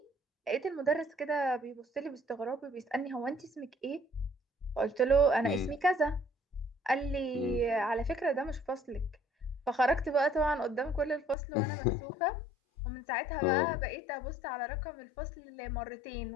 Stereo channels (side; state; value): right; drops out; at 11.4 s